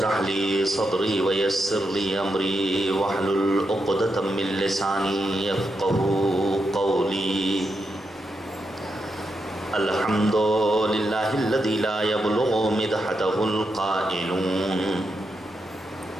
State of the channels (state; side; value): normal; both; correlation 0.84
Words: لي صدري ويسر لي امري واحلل عقدة من لساني يفقهوا قولي الحمد لله الذي لا يبلغ مدحته القائلون